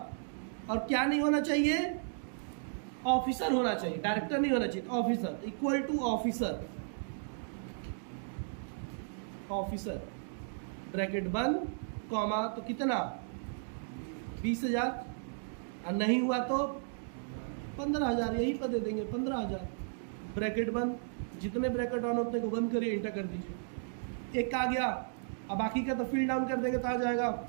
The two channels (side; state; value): left; silent; digital silence